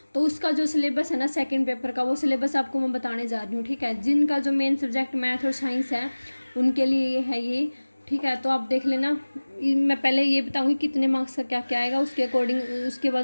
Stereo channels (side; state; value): both; inverted; correlation -1.00